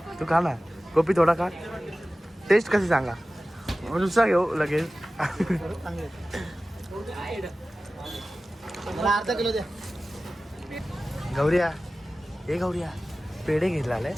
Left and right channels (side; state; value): both; normal; correlation 0.96